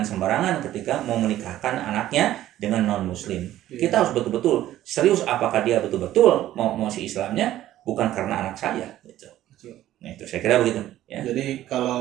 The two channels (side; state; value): left; quieter; 13.5 dB